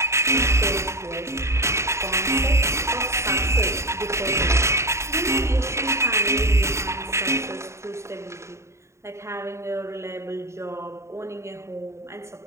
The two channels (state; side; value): late; left; 0.14 ms